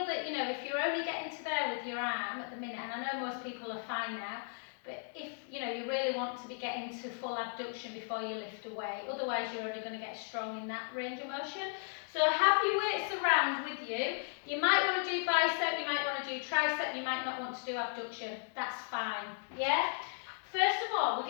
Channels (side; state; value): right; silent; 54 dB below the other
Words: you know, if you're only getting to there with your arm at the minute, and I know most people are fine now, but if, you know, you really want to be getting to full abduction before you lift away, otherwise you're only going to get strong in that range of motion. So have your weights around with you. You might want to do bicep, you might want to do tricep, you might not want to do abduction. That's fine, yeah? First of all, we're